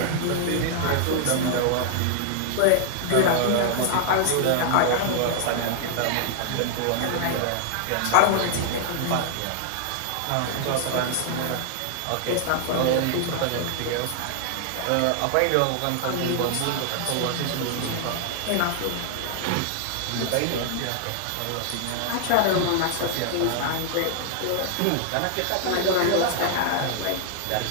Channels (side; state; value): both; different; correlation -0.01